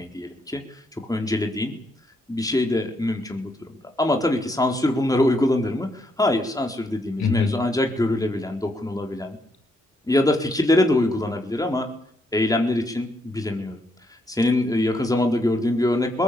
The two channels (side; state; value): both; normal; correlation 0.76